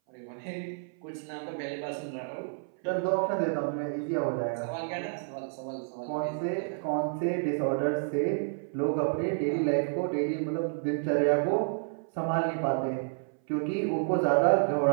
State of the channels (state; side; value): silent; left; 58 dB below the other